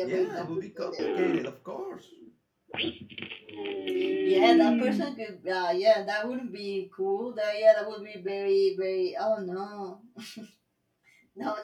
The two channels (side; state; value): both; identical; correlation 1.00